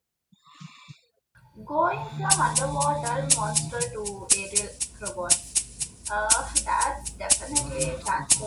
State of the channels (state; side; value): identical; both; correlation 1.00